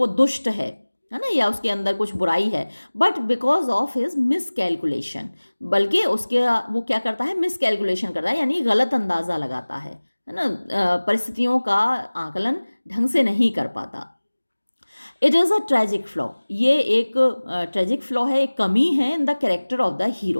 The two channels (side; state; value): both; inverted; correlation -1.00